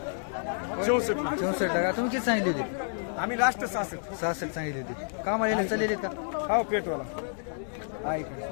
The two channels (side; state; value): right; silent; digital silence